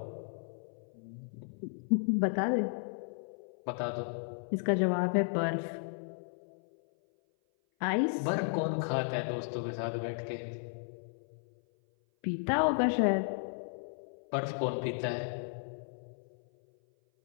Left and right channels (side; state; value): right; silent; 55 dB below the other